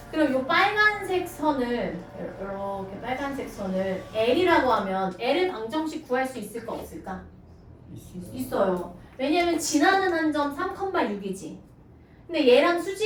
그럼 이 빨간색 선을 이렇게 빨간색 선을 L이라고 하면 L을 방정식 구할 수 있을까 없을까? 있어요. 왜냐면 지나는 한 점 3,6이지. 근데 얘랑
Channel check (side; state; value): both; identical; correlation 1.00